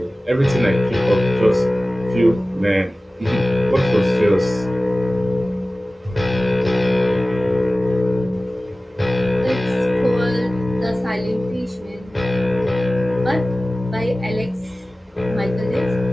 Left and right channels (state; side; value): normal; both; correlation 0.97